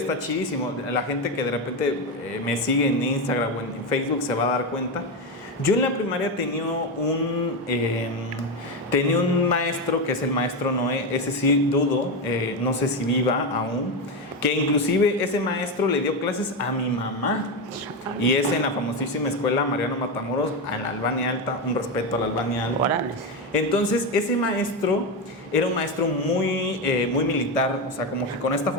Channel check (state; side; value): normal; both; correlation 0.12